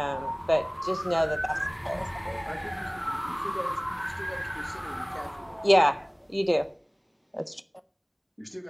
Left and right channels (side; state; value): both; identical; correlation 1.00